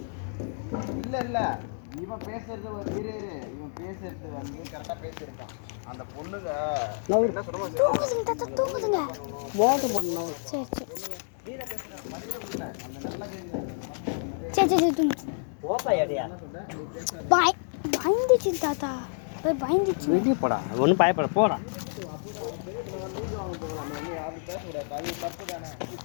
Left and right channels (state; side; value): silent; right; digital silence